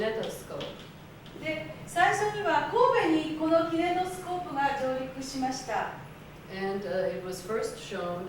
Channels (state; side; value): identical; both; correlation 1.00